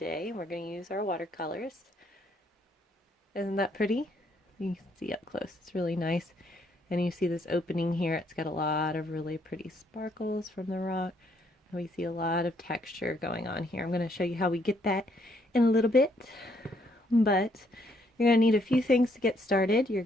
We're going to use our watercolors. Isn't that pretty? You can see up close. It's really nice. And you see this opening here. It's got a lot of really pretty sparkles from the rock. We see a lot of texture going on here. I'm going to show you how we get that in a little bit, but you're going to need a few things to get started. You're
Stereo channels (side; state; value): both; normal; correlation 0.70